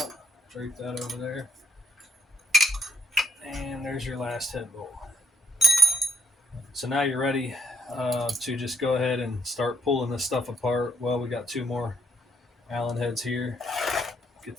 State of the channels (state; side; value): normal; both; correlation 0.71